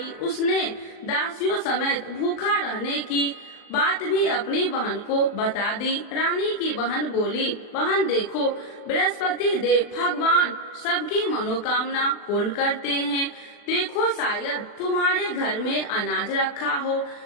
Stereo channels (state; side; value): late; right; 39 ms